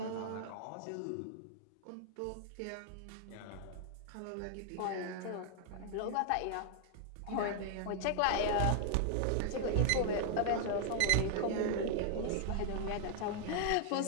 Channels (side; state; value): both; different; correlation 0.00